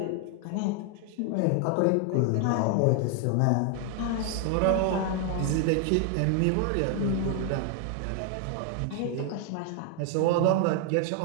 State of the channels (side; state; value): both; different; correlation 0.00